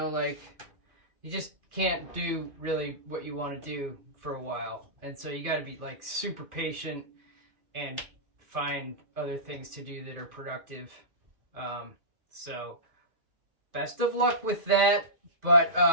like you just can't do really what you want to do for a while. And so you got to be like super patient and find other things to do that are productive. So best of luck with that. But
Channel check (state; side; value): late; left; 2.5 ms